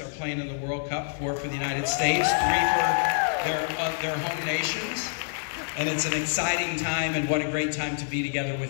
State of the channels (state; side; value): silent; right; digital silence